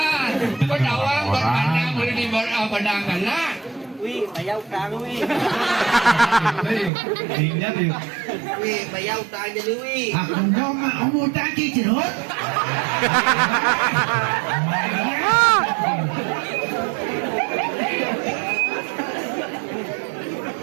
pedawang berkandang boleh berpandangan. Wi, bayaw tang Wi. Tinggal dia. Wi, bayaw tang jadi Wi. Aku mau umutang kicirot.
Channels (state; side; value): drops out; left; at 6.9 s